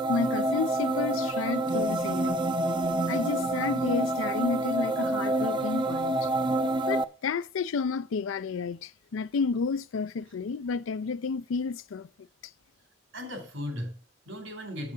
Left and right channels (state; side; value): normal; both; correlation 0.47